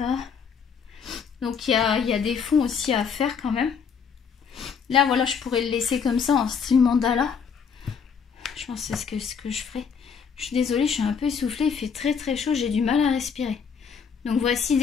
Donc, il y a des fonds aussi à faire quand même. Là, voilà, je pourrais le laisser comme ça en style mandala. Je pense que c'est ce que je ferai. Je suis désolée, je suis un peu essoufflée. Il fait très très chaud, j'ai du mal à respirer. Donc voici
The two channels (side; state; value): right; quieter; 6.4 dB